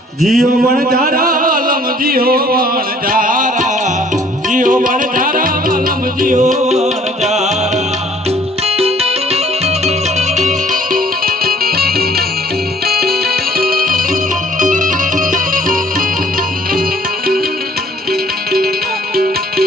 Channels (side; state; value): both; normal; correlation 0.57